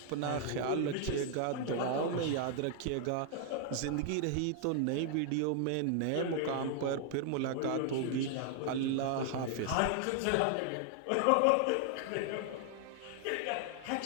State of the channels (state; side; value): different; both; correlation 0.00